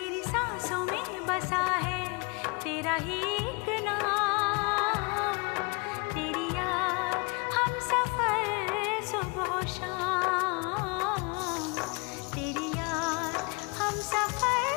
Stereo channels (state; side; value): quieter; right; 30.2 dB